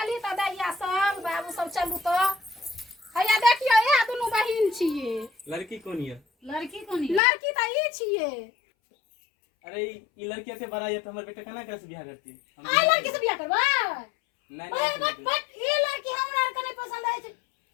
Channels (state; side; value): drops out; right; at 7.2 s